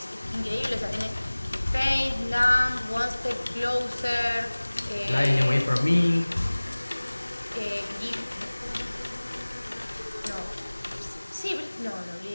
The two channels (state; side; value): inverted; both; correlation -1.00